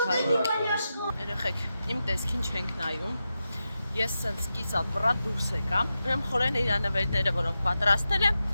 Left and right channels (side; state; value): both; inverted; correlation -0.90